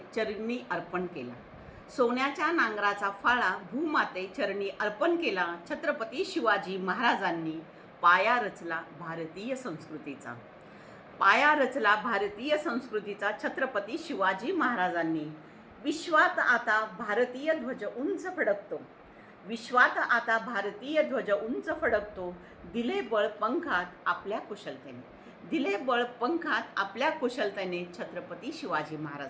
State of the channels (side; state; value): both; identical; correlation 1.00